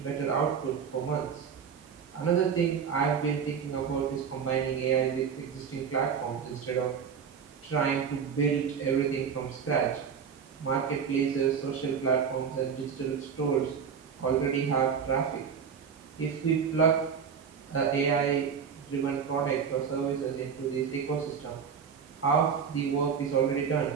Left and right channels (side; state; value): left; quieter; 6.8 dB